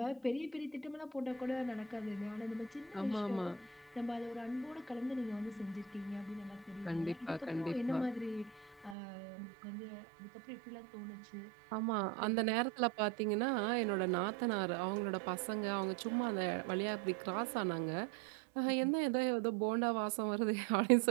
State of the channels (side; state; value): left; drops out; at 9.0 s